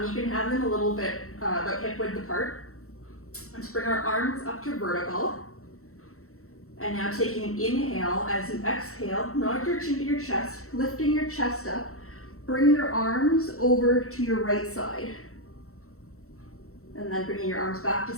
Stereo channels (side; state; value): right; late; 0.63 ms